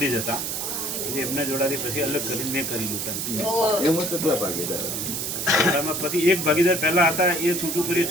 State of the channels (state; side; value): noise; right; hiss, 3 dB below the sound